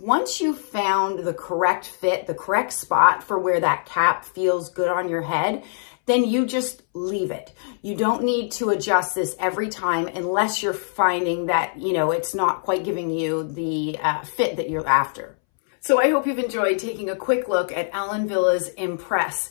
you've found the correct fit, the correct spot for where that cap feels good on your head, then you just leave it. You don't need to adjust this every time unless you're finding that, you know, it's not quite giving you the fit that you're after. So I hope you've enjoyed taking a quick look at Ellen Villa's Impress.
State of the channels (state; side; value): silent; right; 63 dB below the other